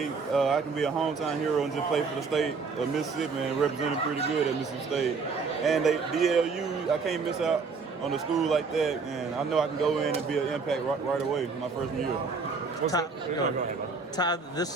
I can be a hometown hero and just play for the state of Mississippi and represent them pretty good at Mississippi State. And DLU, I can't miss out on a school like that, and I know I can go in and be an impact right away my freshman year. Ty,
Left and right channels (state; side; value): quieter; left; 4.7 dB